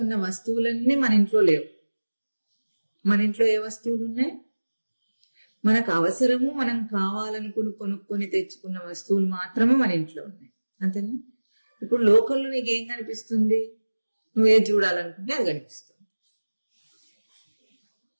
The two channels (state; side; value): inverted; both; correlation -1.00